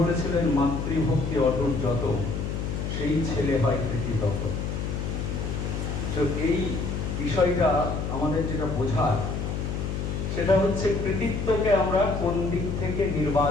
বলেছিলেন, মাতৃভক্তি অটুট যত, সেই ছেলে হয় কৃতিতত। তো এই বিষয়টা আমাদের যেটা বোঝার, সেটা হচ্ছে কৃতিত্বকে আমরা কোন দিক থেকে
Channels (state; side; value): noise; left; hum, 3 dB below the sound